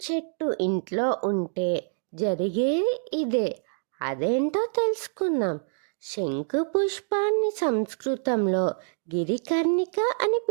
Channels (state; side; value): silent; left; digital silence